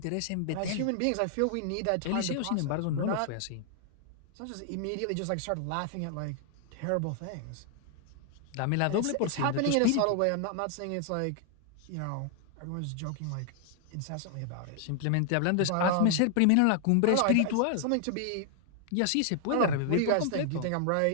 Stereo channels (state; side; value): different; both; correlation 0.00